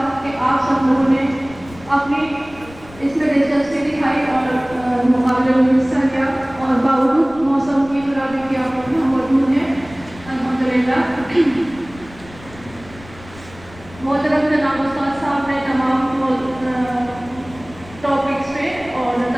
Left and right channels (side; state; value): left; noise; rumble, 20 dB below the sound